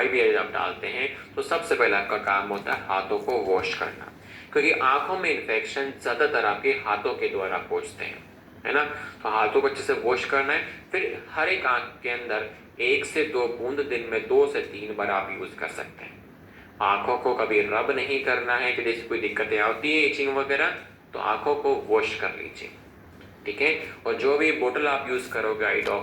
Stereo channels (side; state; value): both; identical; correlation 1.00